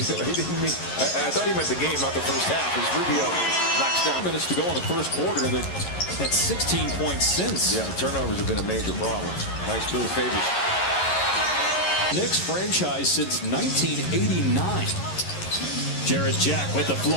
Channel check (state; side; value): late; right; 11 ms